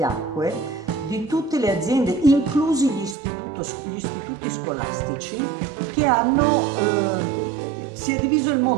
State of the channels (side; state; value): left; drops out; at 3.2 s